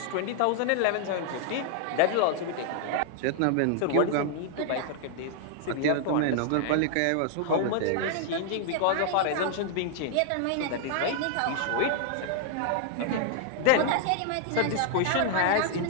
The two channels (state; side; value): different; both; correlation 0.00